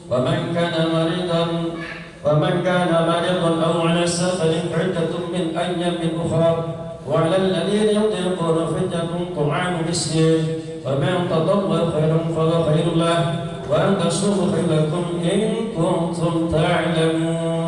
wa man kana maridan أو على سفر عدة من أيام أخرى. وعلى الذين يطيقون فدية طعام مسكين، فمن تطوع خيرا فهو خير له، وأن تصوموا خير لكم إن كنتم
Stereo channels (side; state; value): both; identical; correlation 1.00